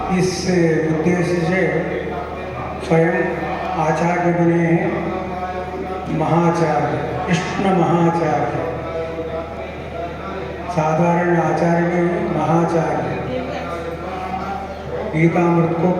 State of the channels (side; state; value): both; identical; correlation 1.00